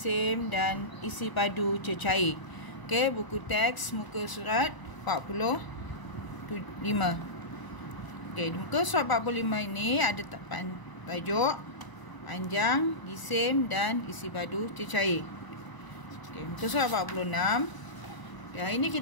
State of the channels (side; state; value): right; late; 1.0 ms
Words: dan isi padu cecair. Okey, buku teks muka surat 45. Okey, di muka surat 45 ini ada tajuk panjang, jisim dan isi padu cecair. Okey, muka surat 46. Ya, ini